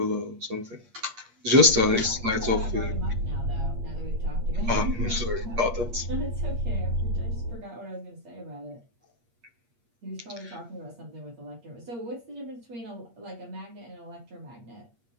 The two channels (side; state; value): left; late; 8.5 ms